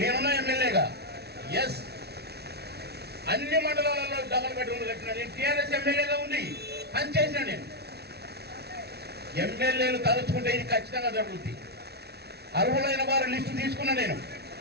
ఎమ్మెల్యేగా ఎస్ అన్ని మండలాలలో డబల్ బెడ్రూమ్లు కట్టినా. నేను టీఆర్ఎస్ ఎమ్మెల్యేగా ఉంది పనిచేసిన. నేను ఎమ్మెల్యేలు తలుచుకుంటే ఇది ఖచ్చితంగా జరుగుతుంది. అర్హులైన వారి లిస్టు తీసుకున్నా. నేను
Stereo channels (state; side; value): late; left; 0.48 ms